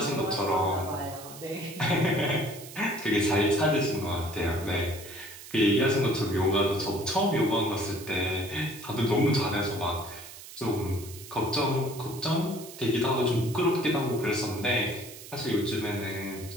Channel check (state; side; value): noise; right; hiss, 15 dB below the sound